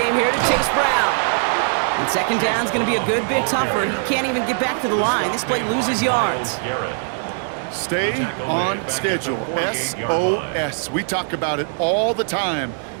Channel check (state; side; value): silent; left; 65 dB below the other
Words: here to Chase Brown. And 2nd down is going to be a good bit tougher. He can't even get back to the line. This play loses yards. Stay on schedule. SOS. We talk about it all the time